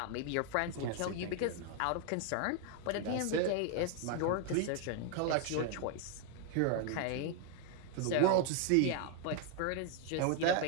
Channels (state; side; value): different; both; correlation 0.00